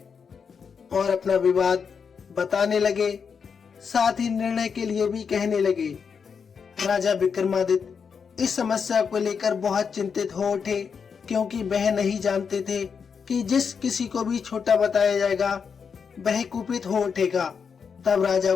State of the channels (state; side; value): quieter; right; 6.2 dB